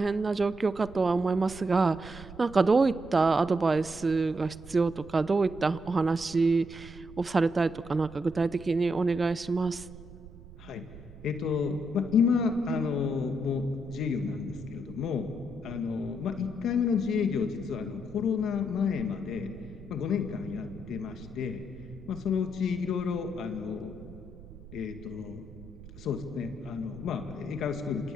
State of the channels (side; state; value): right; noise; rumble, 17 dB below the sound